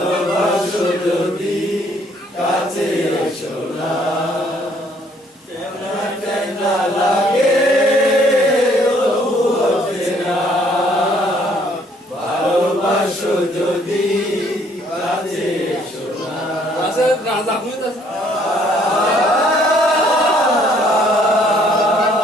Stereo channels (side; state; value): both; normal; correlation 0.63